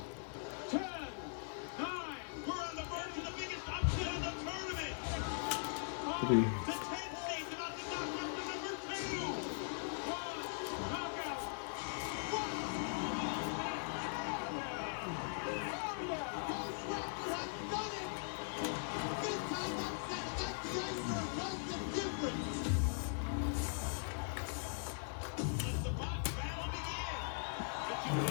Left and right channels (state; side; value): silent; right; digital silence